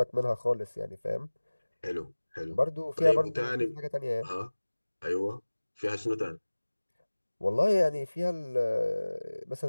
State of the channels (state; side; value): inverted; both; correlation -1.00